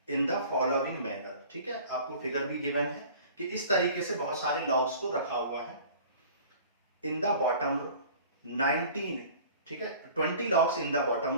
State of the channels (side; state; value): both; inverted; correlation -0.45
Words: in the following manner, ठीक है, आपको फिगर भी गिवन है कि इस तरीके से बहुत सारे लॉग्स को रखा हुआ है, इन द बॉटम रो 19, ठीक है, 20 logs in the